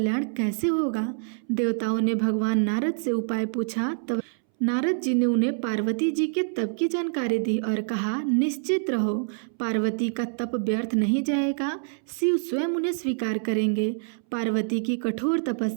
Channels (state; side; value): silent; left; 61 dB below the other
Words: कैसे होगा? देवताओं ने भगवान नारद से उपाय पूछा। तब नारद जी ने उन्हें पार्वती जी के तप की जानकारी दी और कहा, निश्चित रहो, पार्वती का तप व्यर्थ नहीं जाएगा, शिव स्वयं उन्हें स्वीकार करेंगे। पार्वती की कठोर